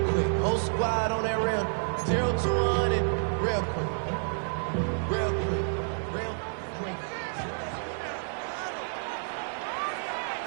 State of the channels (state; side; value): silent; left; 58 dB below the other